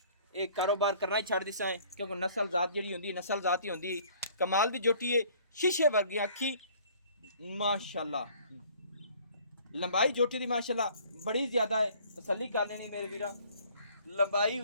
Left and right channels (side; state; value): both; inverted; correlation -0.55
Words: ये कारोबार करना ही छड़ दिसां है, क्योंकि नस्ल जात जेहड़ी हुंदी नस्ल जात ही हुंदी। कमाल दी जोटी है, शीशे वर्गी अखी माशाल्लाह। लंबाई जोटी दी माशाल्लाह बड़ी ज़्यादा है, तसल्ली कर लेनी मेरे वीरां। लंबाई